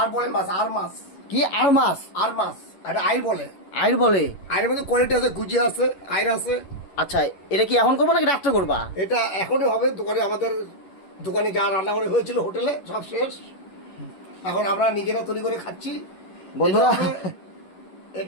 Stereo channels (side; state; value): right; late; 11 ms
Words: বলে মাছ, আর মাছ, কি আর মাছ? আর মাছ, এটা আইর বলে। আইর বলে? আইরের মধ্যে কোয়ালিটি আছে, গুজি আছে, আইর আছে। আচ্ছা, এটা কি এখন করবা নাকি রাত্রে করবা? এটা এখনই হবে। দোকানে আমাদের দোকানে যা রান্না করে হয়েছিল হোটেলে সব শেষ, এখন আমরা নিজেরা তৈরি করে খাচ্ছি। বন্ধুরা,